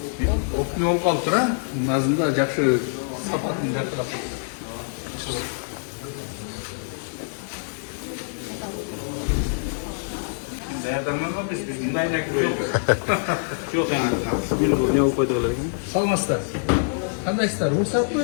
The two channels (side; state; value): right; silent; digital silence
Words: опный болуп калыптыр, а? Назында жакшы сапатын жакшылап калыптыр. Даярданганбыз биз мындайына кирбейбиз. Жок эми. Не болуп койдук эле. Саламатсыздар. Кандайсыздар? Уруксатпы?